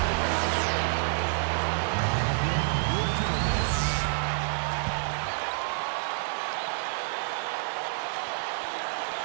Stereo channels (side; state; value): left; silent; digital silence